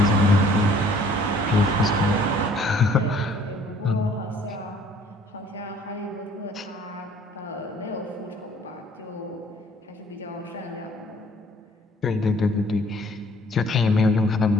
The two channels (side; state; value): both; normal; correlation 0.57